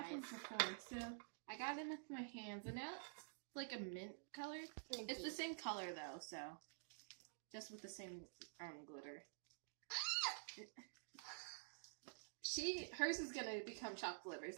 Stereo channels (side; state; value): left; silent; digital silence